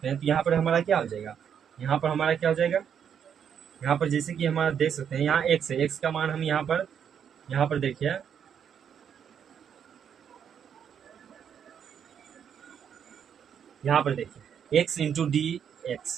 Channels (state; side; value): quieter; left; 8.1 dB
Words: हैं, तो यहाँ पर हमारा क्या हो जाएगा, यहाँ पर हमारा क्या हो जाएगा, यहाँ पर जैसे कि हमारा देख सकते हैं यहाँ x है, x का मान हम यहाँ पर देखिए, यहाँ पर देखिए x into D